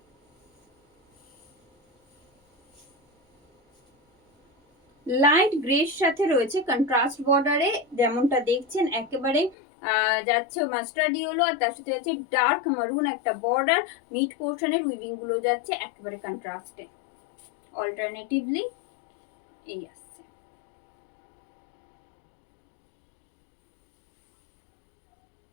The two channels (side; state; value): right; drops out; at 9.6 s